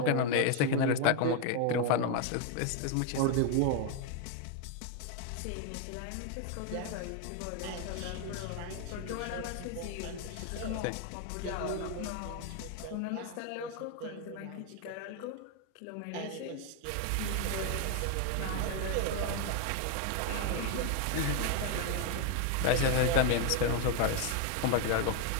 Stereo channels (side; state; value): both; different; correlation 0.01